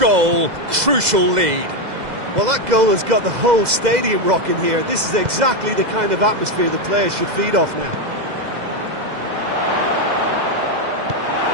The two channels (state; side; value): late; left; 2.0 ms